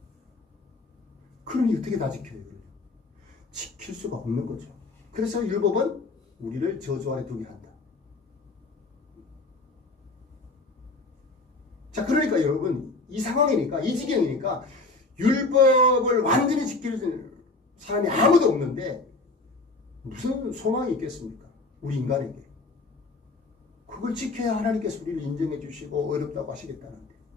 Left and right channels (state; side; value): quieter; right; 3.4 dB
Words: 그러니 어떻게 다 지켜요? 지킬 수가 없는 거죠. 그래서 율법은 우리를 저주 아래 두게 한다. 자, 그러니까 여러분, 이 상황이니까, 이 지경이니까 율법을 완전히 지킬 사람이 아무도 없는데 무슨 소망이 있겠습니까? 우리 인간에게. 그걸 지켜야 하나님께서 우리를 인정해 주시고 어렵다고 하시겠다는데.